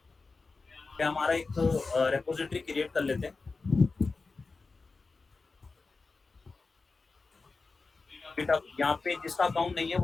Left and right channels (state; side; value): quieter; right; 4.1 dB